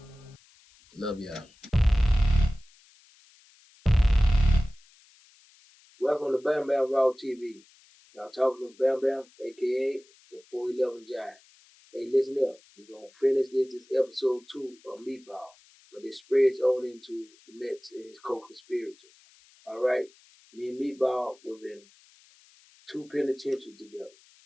Love y'all. Welcome to Bam Bam Raw TV. Y'all talking to Bam Bam, a.k.a. the 411 Giant. Hey, listen up. We're going to finish this episode 2 of Meatball, but it spreads on into the Mets and his co-conspirators. All right? Me and Meatball was in 2 penitentiaries together.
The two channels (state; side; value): noise; left; hiss, 28 dB below the sound